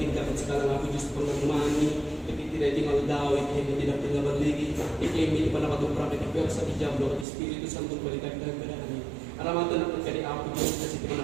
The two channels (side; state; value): left; drops out; at 7.2 s